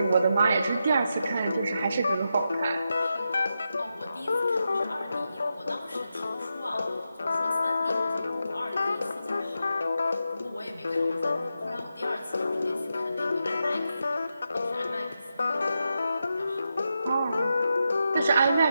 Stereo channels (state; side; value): inverted; both; correlation -0.87